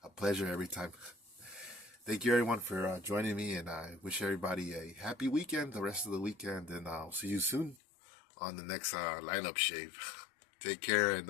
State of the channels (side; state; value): right; drops out; at 7.8 s